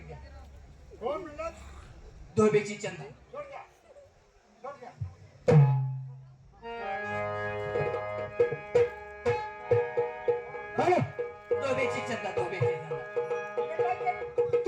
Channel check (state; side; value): identical; both; correlation 1.00